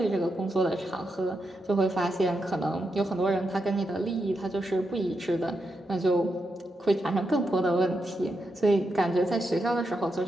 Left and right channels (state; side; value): normal; both; correlation 0.84